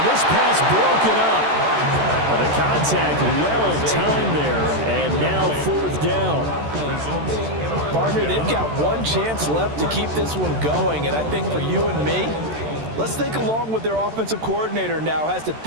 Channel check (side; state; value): left; late; 13 ms